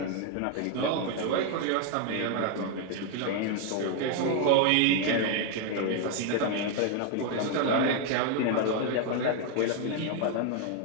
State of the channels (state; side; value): different; both; correlation 0.01